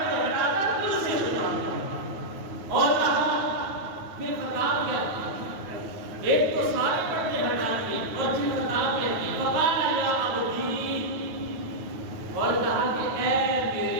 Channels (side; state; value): left; late; 9.3 ms